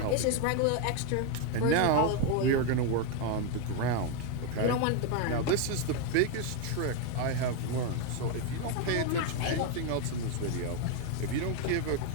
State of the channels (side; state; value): both; different; correlation 0.02